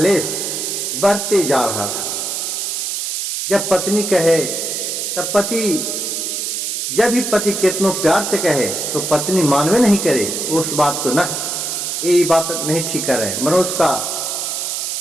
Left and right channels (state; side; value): noise; right; hiss, 2 dB below the sound